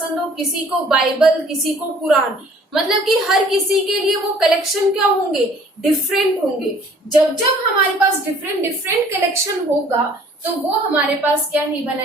हो, किसी को बाइबल, किसी को कुरान, मतलब कि हर किसी के लिए वो कलेक्शन क्या होंगे, डिफरेंट होंगे। जब जब हमारे पास डिफरेंट डिफरेंट कलेक्शन होगा तो वो हमारे पास क्या नहीं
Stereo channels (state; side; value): normal; both; correlation 0.55